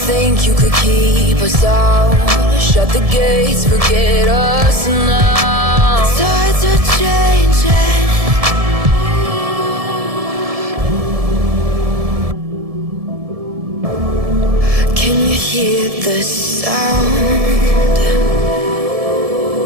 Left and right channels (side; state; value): left; late; 1.7 ms